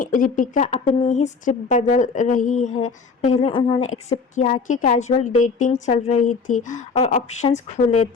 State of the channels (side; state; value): right; quieter; 4.9 dB